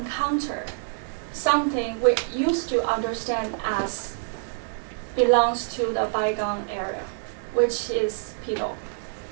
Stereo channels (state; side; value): silent; left; 61 dB below the other